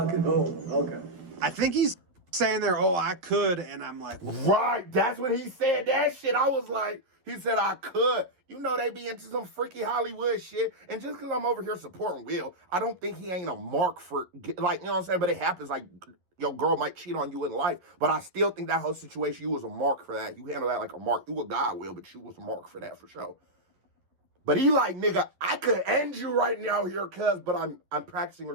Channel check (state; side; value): late; left; 11 ms